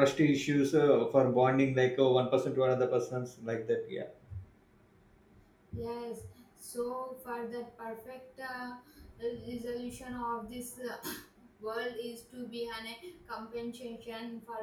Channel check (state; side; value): identical; both; correlation 1.00